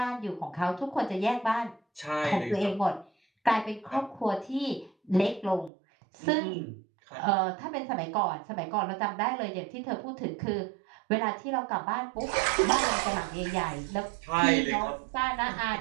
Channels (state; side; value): drops out; left; at 5.7 s